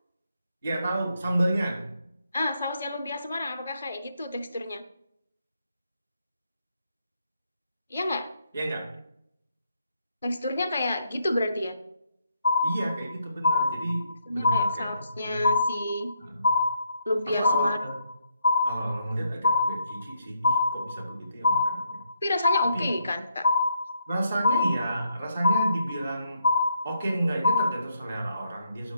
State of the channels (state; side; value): inverted; both; correlation -0.76